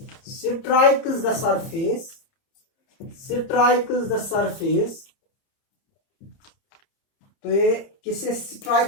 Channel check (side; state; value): right; late; 30 ms